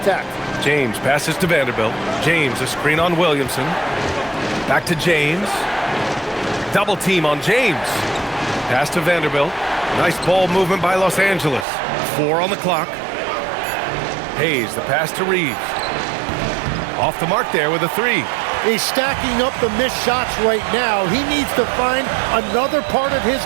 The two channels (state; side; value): drops out; left; at 11.7 s